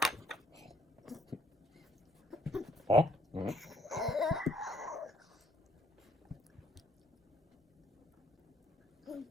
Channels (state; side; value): normal; both; correlation 0.65